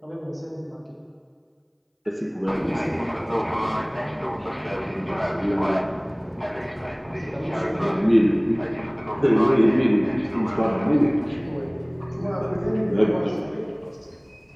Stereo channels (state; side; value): identical; both; correlation 1.00